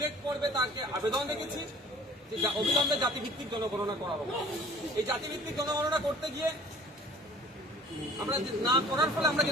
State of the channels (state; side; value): normal; both; correlation 0.50